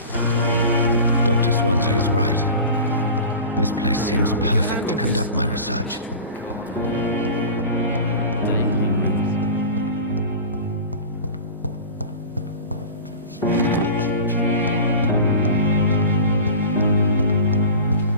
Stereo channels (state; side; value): inverted; both; correlation -0.35